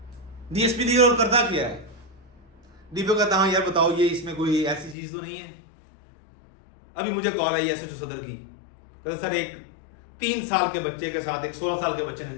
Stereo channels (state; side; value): drops out; right; at 5.0 s